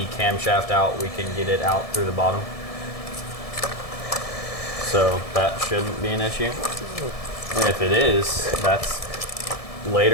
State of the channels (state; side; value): late; right; 1.7 ms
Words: camshaft out, we can get it out through the bottom. So that shouldn't be an issue. And if it is, that's